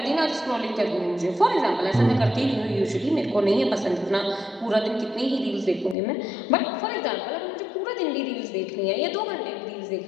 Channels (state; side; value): drops out; right; at 6.0 s